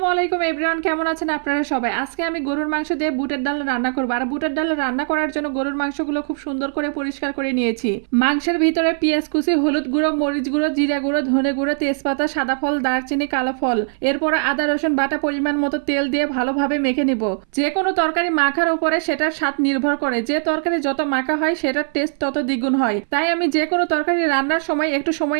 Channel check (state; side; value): silent; left; 59 dB below the other